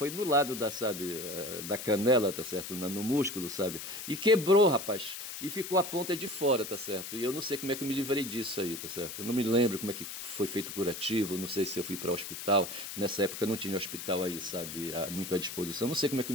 no lado da canela, tá certo? No músculo, sabe? E quebrou, rapaz. E ficou a ponta de fora, tá certo? E eu não sei como é que eu me livrei disso aí, tá certo? Eu não me lembro como é que foi feito o curativo, não sei se eu fui para o hospital. Nessa nessa época não tinha hospital aí, sabe, muito à disposição. Não sei como é que eu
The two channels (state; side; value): noise; left; hiss, 8 dB below the sound